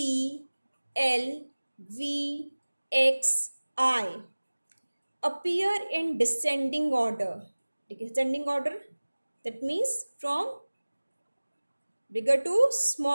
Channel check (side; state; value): both; inverted; correlation -1.00